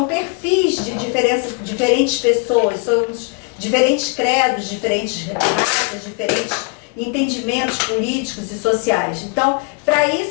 perfis de diferentes pessoas, somos diferentes credos, diferentes raças, diferentes entendimentos políticos e sociais. Então, para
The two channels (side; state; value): right; quieter; 33.7 dB